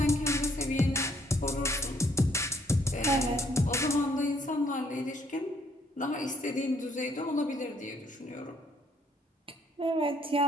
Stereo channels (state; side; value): normal; both; correlation 0.66